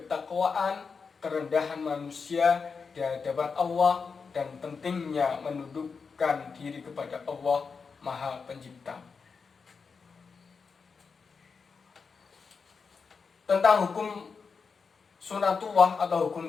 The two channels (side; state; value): right; quieter; 5.3 dB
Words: kerendahan manusia di hadapan Allah, dan pentingnya menundukkan diri kepada Allah Maha Pencipta. Tentang hukum sunatullah atau hukum